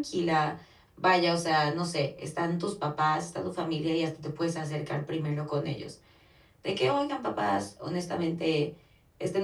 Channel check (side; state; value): both; identical; correlation 1.00